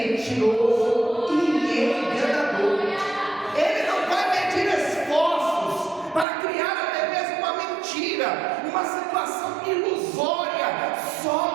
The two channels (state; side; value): drops out; left; at 6.2 s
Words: e enganador. Ele não vai medir esforços para criar até mesmo uma mentira, uma situação ilusória, só